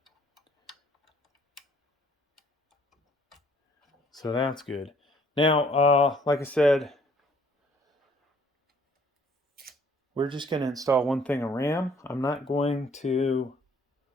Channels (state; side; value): normal; both; correlation 0.60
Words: So that's good. Now, like I said, we're just going to install one thing of RAM. I'm not going to